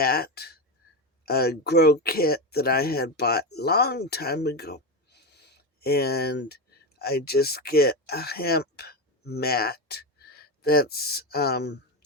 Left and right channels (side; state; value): both; normal; correlation 0.14